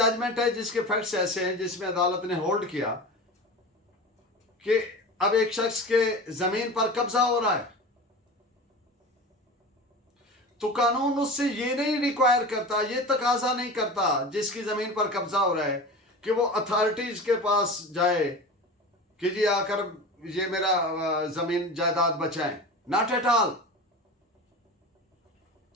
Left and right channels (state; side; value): normal; both; correlation 0.32